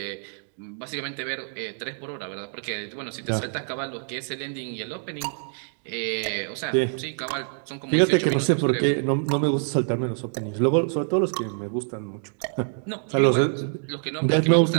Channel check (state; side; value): silent; left; 61 dB below the other